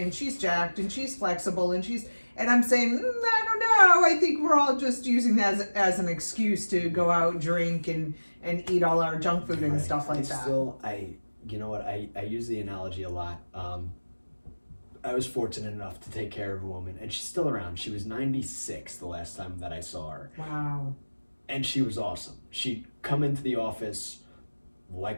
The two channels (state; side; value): inverted; both; correlation -1.00